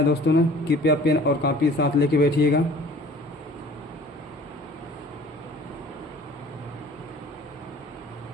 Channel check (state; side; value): normal; both; correlation 0.49